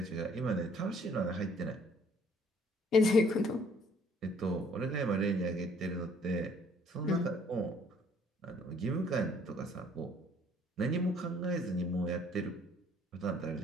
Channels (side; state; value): both; normal; correlation 0.60